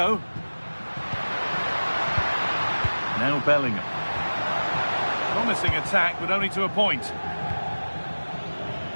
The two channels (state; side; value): inverted; both; correlation -1.00